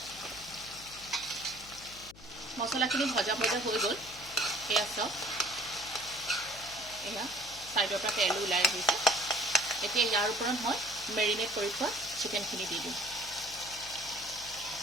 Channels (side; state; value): left; noise; hum, 20 dB below the sound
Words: মছলাখিনি ভজা ভজা হৈ গ'ল। এয়া চাওক, এয়া ছাইডৰ পৰা তেল ওলাই আহিছে। এতিয়া ইয়াৰ ওপৰত মই মেৰিনেট কৰি থোৱা চিকেনখিনি দি দিম।